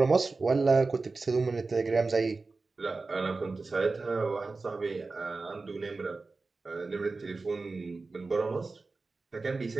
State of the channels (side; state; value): left; quieter; 3.8 dB